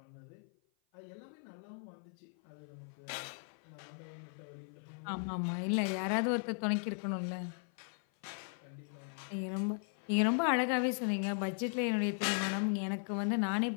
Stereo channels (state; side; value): silent; right; 53 dB below the other